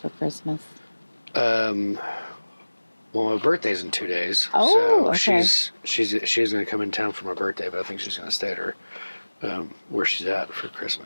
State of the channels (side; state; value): both; inverted; correlation -1.00